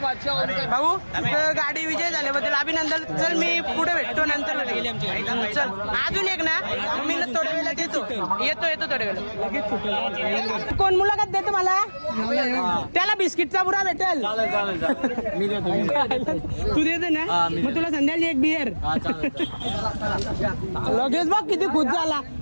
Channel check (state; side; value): inverted; both; correlation -1.00